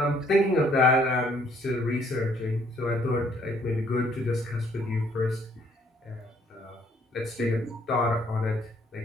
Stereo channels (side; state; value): both; normal; correlation 0.64